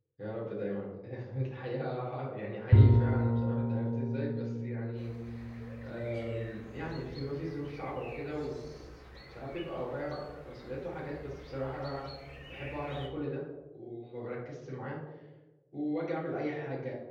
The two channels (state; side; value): identical; both; correlation 1.00